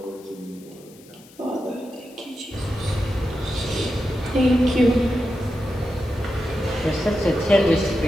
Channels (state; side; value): noise; left; hiss, 25 dB below the sound